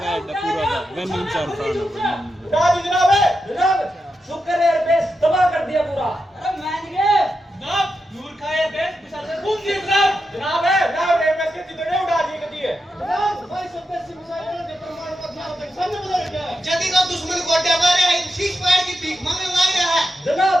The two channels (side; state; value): both; normal; correlation 0.88